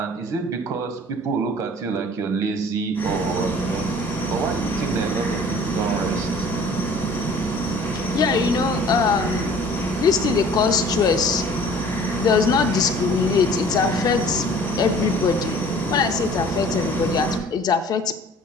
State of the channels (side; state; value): both; normal; correlation 0.49